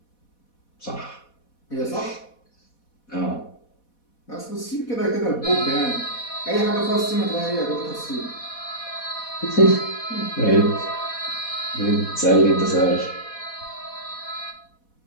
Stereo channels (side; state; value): right; late; 4.1 ms